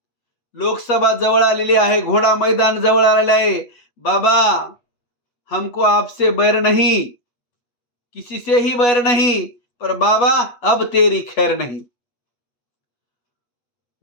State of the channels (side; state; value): right; late; 8.2 ms